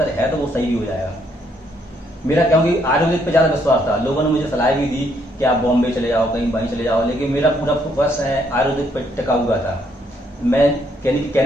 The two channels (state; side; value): normal; both; correlation 0.71